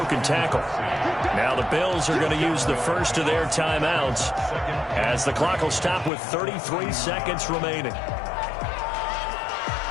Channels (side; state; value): right; drops out; at 6.1 s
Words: tackle. Now the Bills are going to use the first of their timeouts as the clock will stop with 33 seconds remaining.